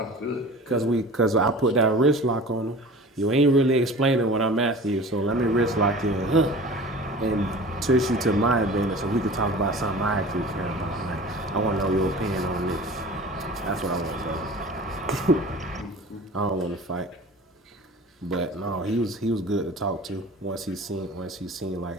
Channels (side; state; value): both; normal; correlation 0.40